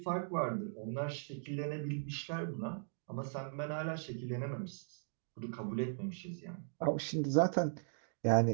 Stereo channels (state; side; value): silent; left; digital silence